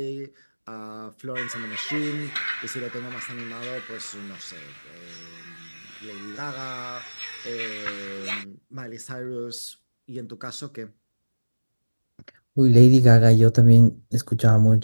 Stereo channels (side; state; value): both; inverted; correlation -1.00